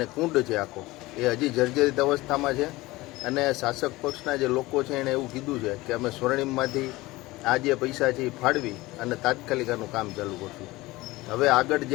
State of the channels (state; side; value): quieter; right; 19.9 dB